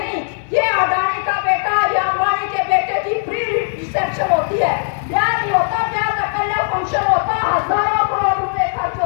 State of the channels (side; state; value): right; silent; 66 dB below the other